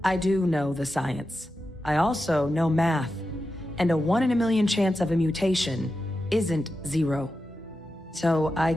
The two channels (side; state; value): both; normal; correlation 0.90